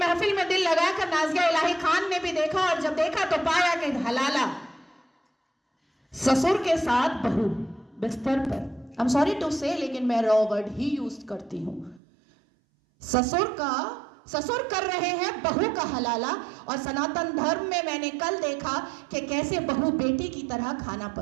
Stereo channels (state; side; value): drops out; left; at 12.0 s